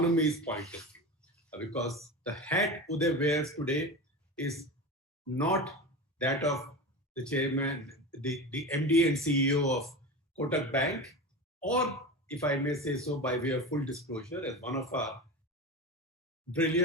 point of view. Because the hat Uday wears today is not that of the chairman, the MD and CEO of Kotak Bank, or if I may say so by way of full disclosure, as one of our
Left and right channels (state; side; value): normal; both; correlation 0.26